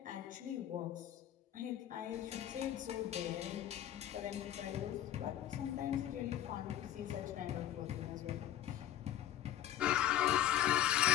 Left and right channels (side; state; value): right; quieter; 11.7 dB